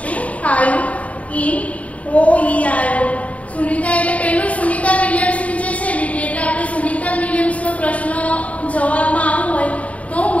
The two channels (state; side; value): late; right; 0.067 ms